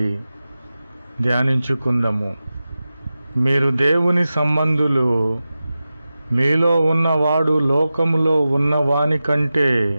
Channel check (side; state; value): both; inverted; correlation -0.94